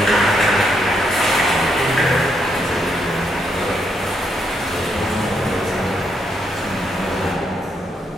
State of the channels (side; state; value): both; normal; correlation 0.77